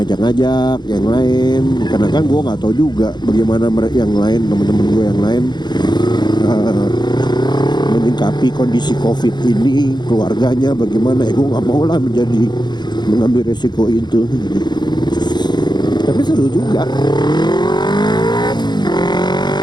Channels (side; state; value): right; late; 0.21 ms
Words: ngajak-ngajak yang lain, karena kan gue nggak tahu juga bagaimana yang lain, teman-teman gue yang lain menyikapi kondisi COVID ini, keluarganya bagaimana. Gue nggak mau lah mengambil resiko itu. Tapi seru juga